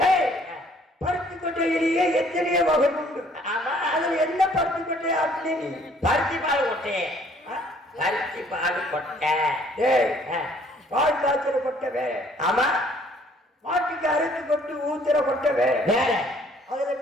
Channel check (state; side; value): normal; both; correlation 0.60